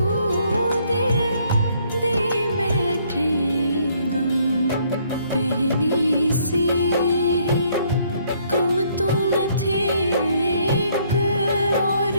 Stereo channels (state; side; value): inverted; both; correlation -0.66